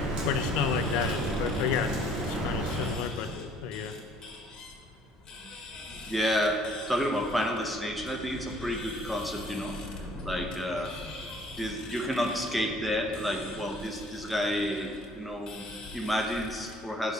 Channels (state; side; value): normal; both; correlation 0.57